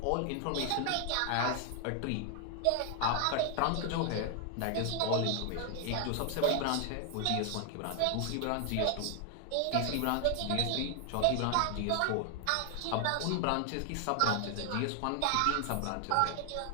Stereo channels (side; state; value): both; different; correlation 0.00